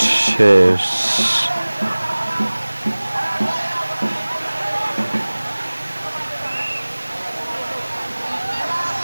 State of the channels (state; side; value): inverted; both; correlation -1.00